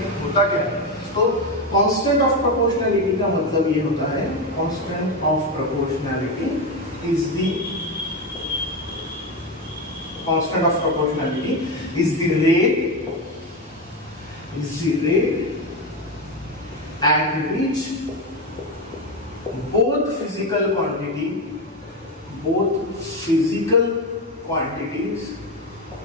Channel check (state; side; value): normal; both; correlation 0.14